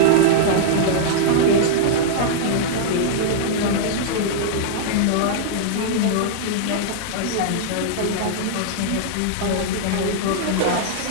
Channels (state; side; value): different; both; correlation -0.01